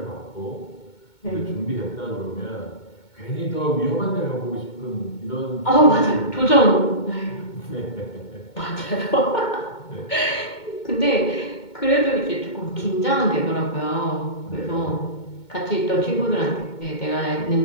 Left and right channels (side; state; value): right; late; 2.2 ms